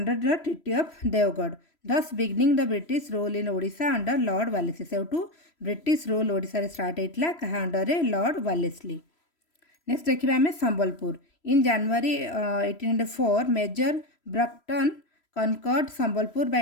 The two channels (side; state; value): right; late; 3.0 ms